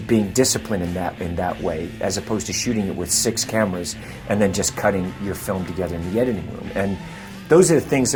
being disciplined in that way, as opposed to shooting it with 6 cameras and then just cutting your film together in the editing room. And those are the things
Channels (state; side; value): identical; both; correlation 1.00